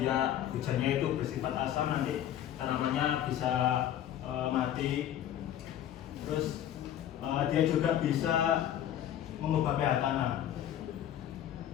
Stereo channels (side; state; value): right; quieter; 11.2 dB